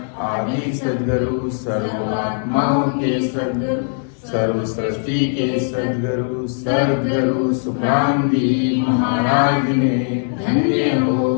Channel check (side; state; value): right; silent; 57 dB below the other